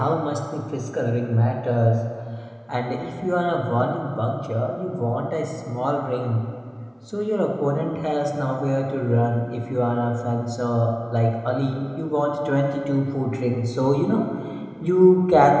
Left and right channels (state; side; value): identical; both; correlation 1.00